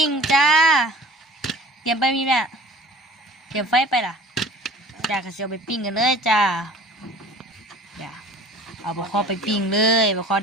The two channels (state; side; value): normal; both; correlation 0.44